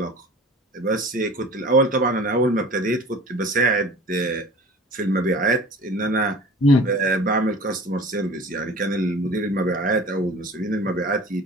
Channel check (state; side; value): normal; both; correlation 0.42